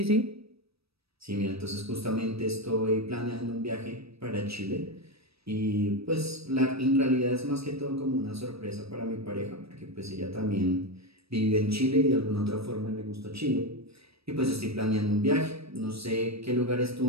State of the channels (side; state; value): left; late; 0.77 ms